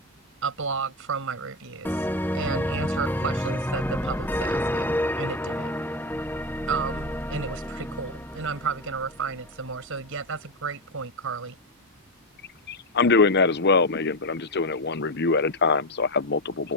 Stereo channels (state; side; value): normal; both; correlation 0.13